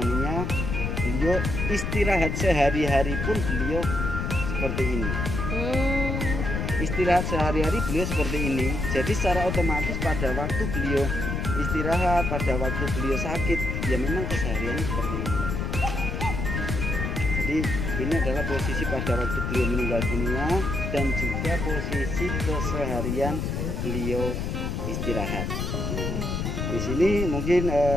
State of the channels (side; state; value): left; noise; rumble, 2 dB below the sound